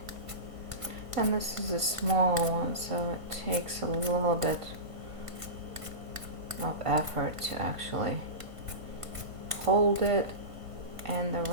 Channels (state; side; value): late; left; 1.5 ms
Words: And this is a smaller one, so it takes a little bit of effort to actually hold it in the